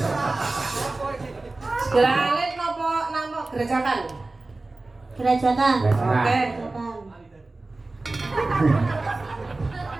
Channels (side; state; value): left; quieter; 3.2 dB